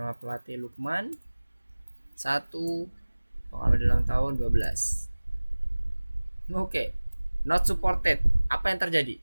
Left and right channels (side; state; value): both; inverted; correlation -1.00